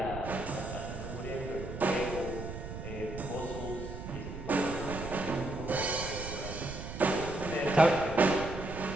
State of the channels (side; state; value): right; noise; rumble, 8 dB below the sound